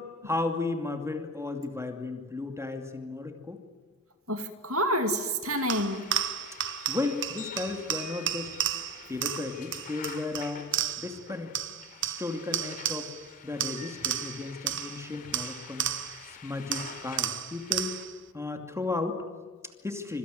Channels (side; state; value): both; normal; correlation 0.33